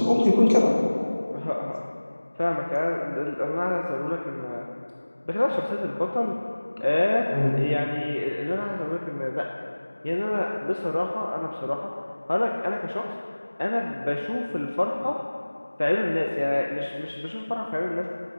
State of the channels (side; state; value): both; inverted; correlation -1.00